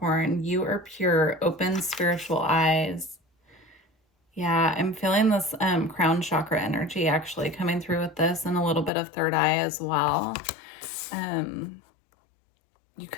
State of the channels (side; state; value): right; drops out; at 8.9 s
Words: You are pure, open spiritual eyes. Yeah, I'm feeling this crown chakra energy actually coming through with this, and a little bit of third eye as well. You